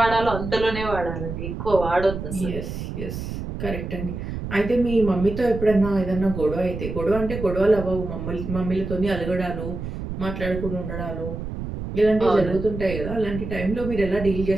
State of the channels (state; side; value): noise; right; rumble, 7 dB below the sound